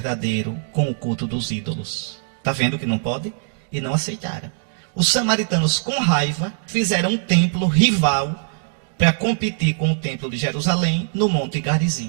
com o culto dos ídolos. Está vendo que não pode? E não aceitaram. Os samaritanos, com raiva, fizeram um templo rival para competir com o templo de Jerusalém no Monte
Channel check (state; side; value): silent; left; digital silence